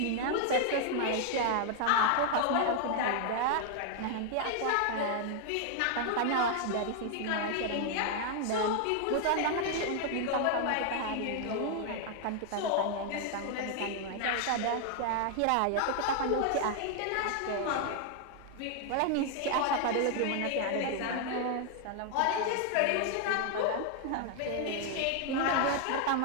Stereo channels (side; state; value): both; different; correlation 0.00